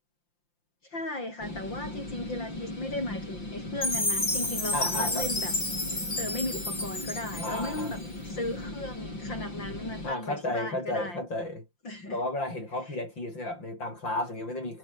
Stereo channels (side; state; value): right; late; 5.8 ms